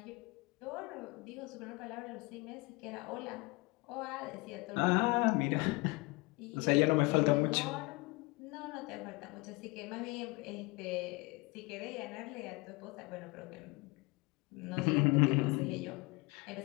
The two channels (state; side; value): quieter; right; 25.2 dB